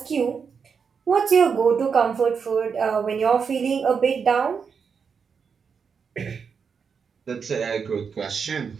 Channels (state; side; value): quieter; left; 6.1 dB